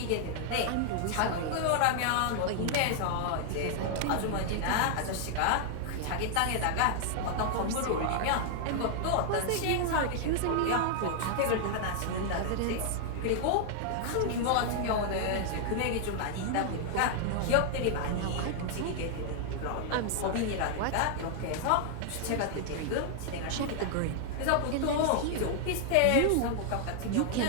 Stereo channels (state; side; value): different; both; correlation 0.00